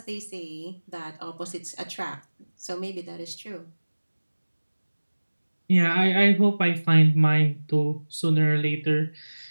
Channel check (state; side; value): inverted; both; correlation -1.00